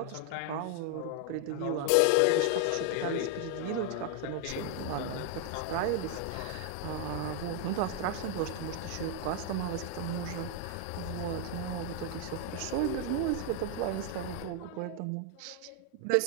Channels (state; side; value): different; both; correlation 0.00